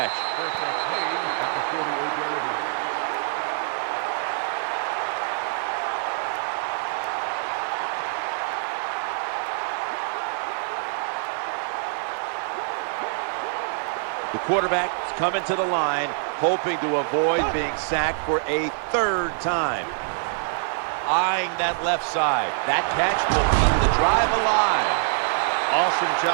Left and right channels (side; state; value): left; silent; digital silence